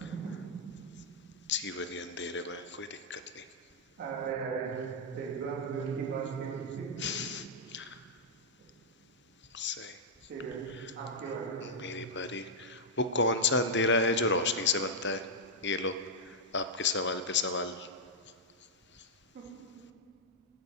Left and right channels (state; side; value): normal; both; correlation -0.07